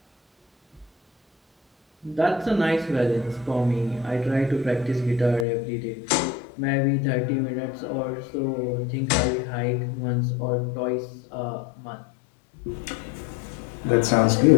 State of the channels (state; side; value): drops out; right; at 5.5 s